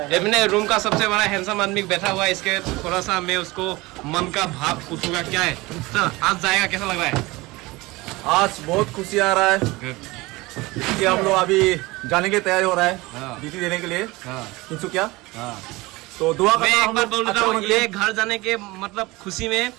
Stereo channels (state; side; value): quieter; left; 21.8 dB